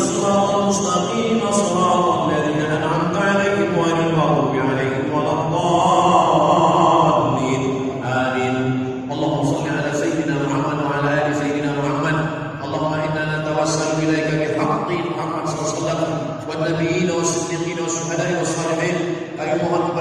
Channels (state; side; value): identical; both; correlation 1.00